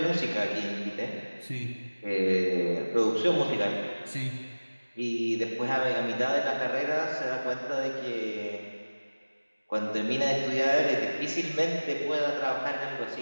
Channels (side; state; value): both; inverted; correlation -1.00